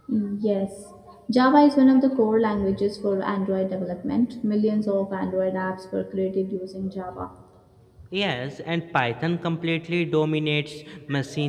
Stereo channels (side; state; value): both; identical; correlation 1.00